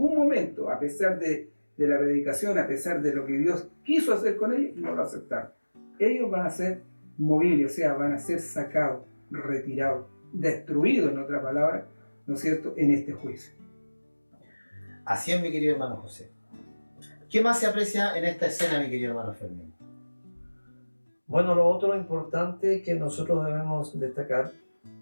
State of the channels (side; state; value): both; inverted; correlation -1.00